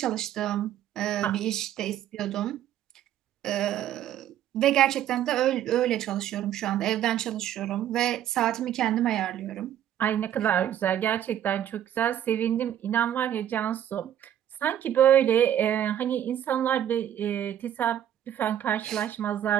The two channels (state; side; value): quieter; left; 10.9 dB